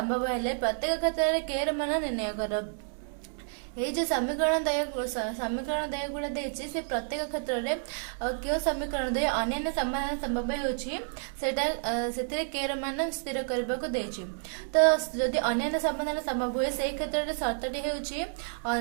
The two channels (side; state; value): left; silent; 58 dB below the other